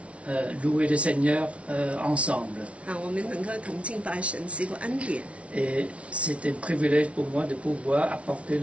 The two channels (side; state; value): left; late; 0.062 ms